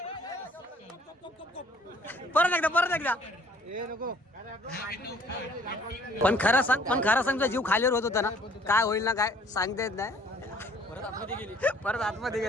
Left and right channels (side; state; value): both; normal; correlation 0.57